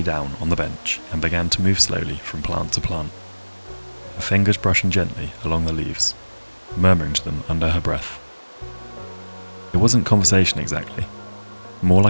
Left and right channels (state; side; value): inverted; both; correlation -1.00